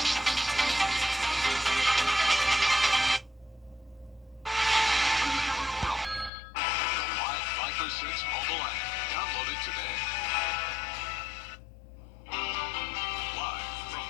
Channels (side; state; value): right; drops out; at 6.3 s